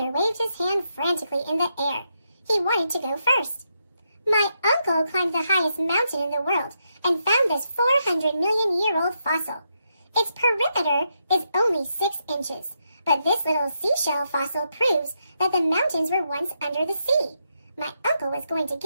waved his hand frantically in the air. He wanted to go first. My uncle climbed the highest mountain in the world and found this 400-million-year-old fossil. Its perimeter is only 6 inches, but this little seashell fossil proves that the mountains were once under the sea. My uncle was going to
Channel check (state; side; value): inverted; both; correlation -0.81